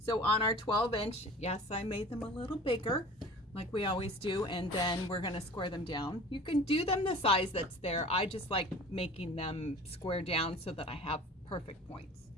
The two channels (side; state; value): both; normal; correlation 0.42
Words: on our 12-inch, yes, I made them a little bigger like we always do, and then we're going to square them down. You can do them the size that's there. I just like making them square down so that I have perfect points.